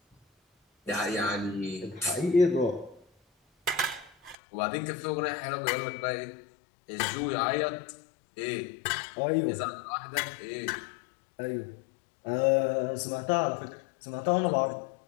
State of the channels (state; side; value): drops out; right; at 4.4 s